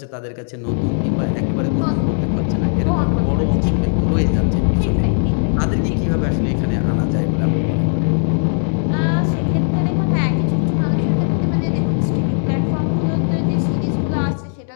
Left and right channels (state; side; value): silent; right; digital silence